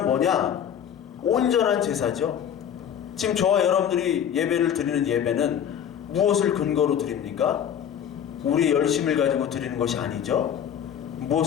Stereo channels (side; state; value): right; quieter; 9.0 dB